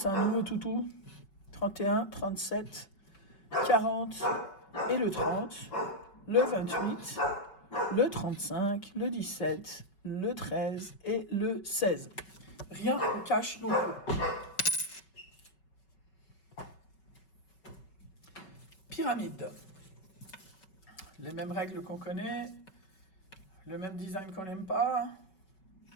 un nouveau toutou, 31, 37, 40 et le 30, le 28, le 35, le 17, le 13 et le 16. Rien en cash non plus. Pyramide. Les mêmes règles qu'on connaît, le même design qu'on n'aime pas.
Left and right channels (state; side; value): late; right; 5.3 ms